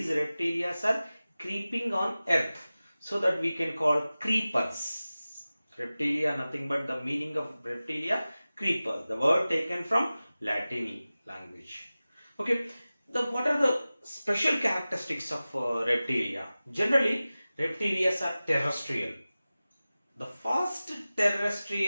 reptilia are creeping on earth, so that we can call creepers. Reptilia, nothing but the meaning of reptilia, creeper, the word taken from Latin language. Okay, what are the special characteristics of reptilia? Generally, reptilia are terrestrial, the first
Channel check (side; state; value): both; inverted; correlation -0.97